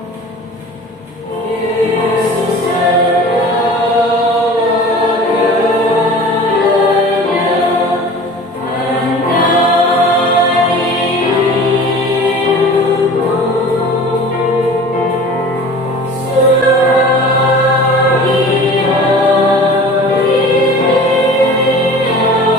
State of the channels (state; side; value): normal; both; correlation 0.41